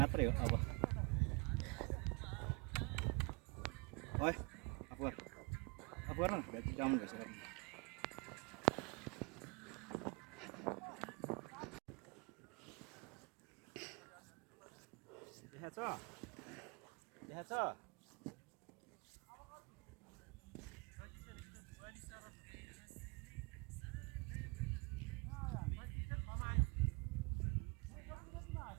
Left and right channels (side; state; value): left; quieter; 29.3 dB